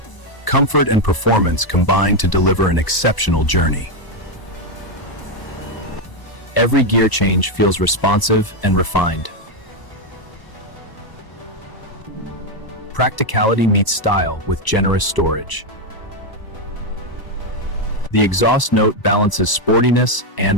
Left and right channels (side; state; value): right; late; 1.0 ms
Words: Comfort and performance combine to deliver an exceptional journey. Every gear change feels responsive and refined. Practicality meets style with generous storage. The exhaust note balances sportiness